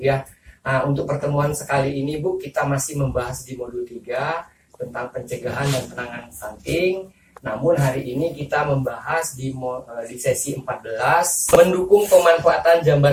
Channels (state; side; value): identical; both; correlation 1.00